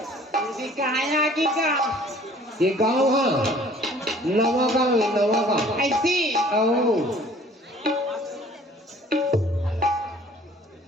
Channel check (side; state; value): both; normal; correlation 0.53